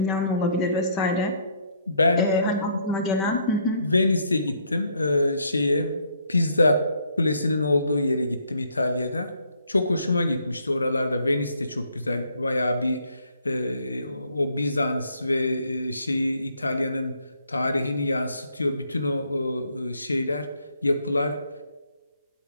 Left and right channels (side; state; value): both; inverted; correlation -0.67